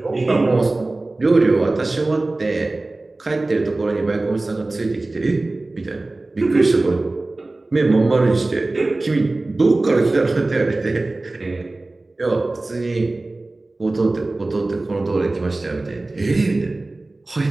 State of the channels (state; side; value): quieter; left; 3.0 dB